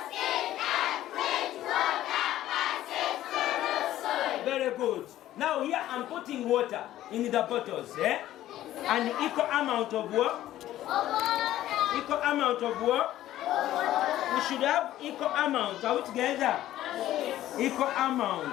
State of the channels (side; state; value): right; quieter; 13.7 dB